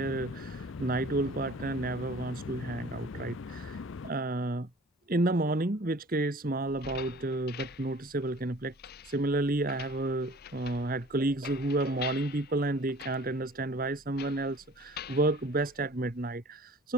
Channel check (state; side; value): normal; both; correlation 0.48